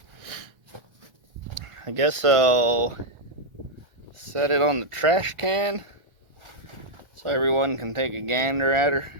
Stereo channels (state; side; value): late; left; 1.3 ms